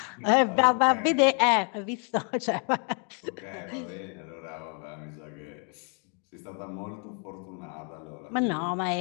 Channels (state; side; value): quieter; right; 39.3 dB